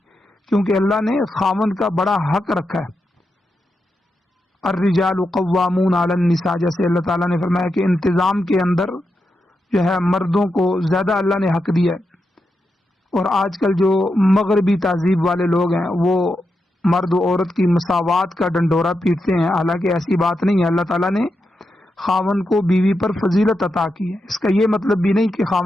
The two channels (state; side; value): normal; both; correlation 0.86